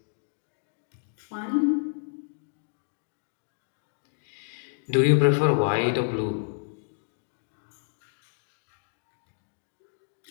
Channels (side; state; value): right; silent; digital silence